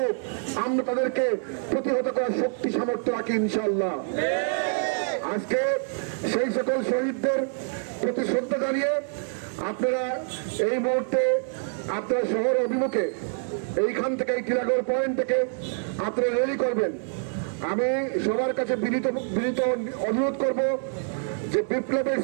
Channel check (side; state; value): left; silent; 61 dB below the other